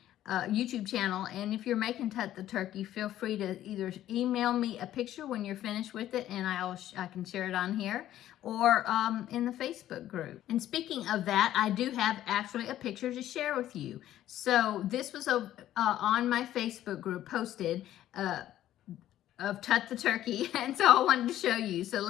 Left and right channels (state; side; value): quieter; right; 12.7 dB